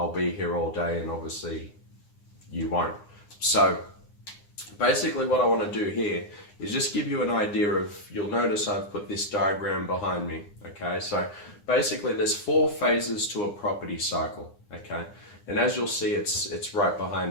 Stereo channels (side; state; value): right; late; 9.8 ms